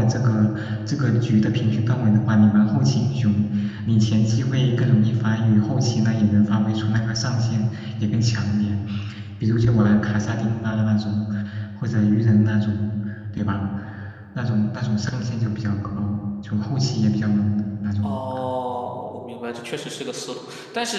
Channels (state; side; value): identical; both; correlation 1.00